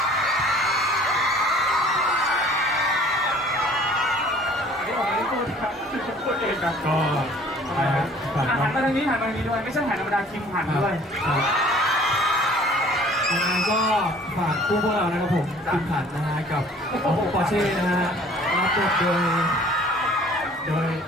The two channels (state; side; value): normal; both; correlation 0.52